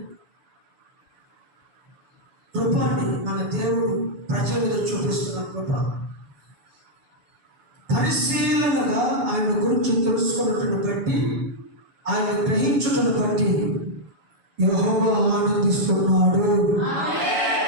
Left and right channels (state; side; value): late; left; 7.0 ms